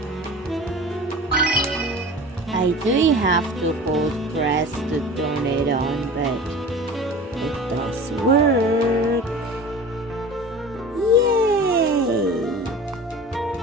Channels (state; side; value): normal; both; correlation 0.37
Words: I do have to hold press to turn it on, but it does work. Yay!